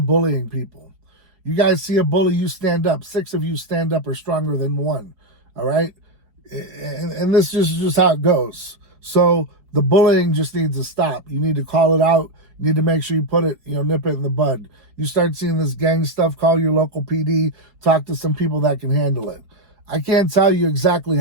bullying people. You guys see a bully, you stand up. 6 of you stand up are stronger than 1. All right? And this is just how it goes. So the bullying just needs to stop. You need to call it out. You need to make sure you put it, nip it in the bud. You start seeing this gang stuff, call your local PD, talk to some people that can handle it. I can't tell you exactly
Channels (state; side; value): late; left; 4.7 ms